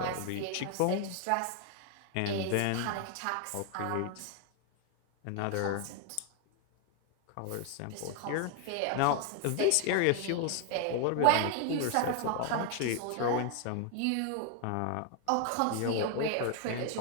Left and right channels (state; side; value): different; both; correlation 0.01